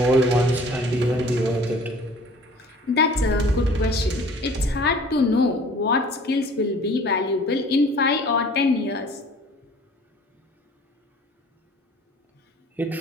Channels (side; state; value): both; normal; correlation 0.49